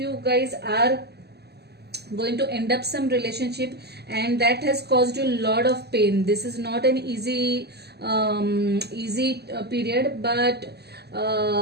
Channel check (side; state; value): left; late; 0.48 ms